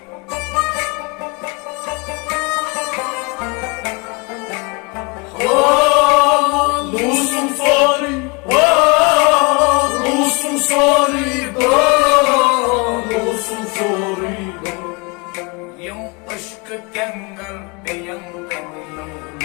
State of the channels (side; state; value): right; quieter; 29.3 dB